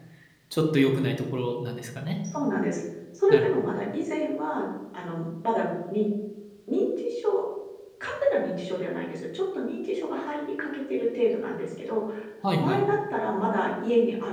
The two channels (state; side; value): identical; both; correlation 1.00